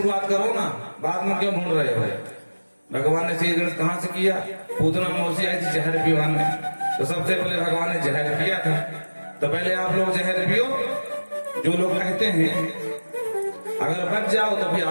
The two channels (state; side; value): inverted; both; correlation -1.00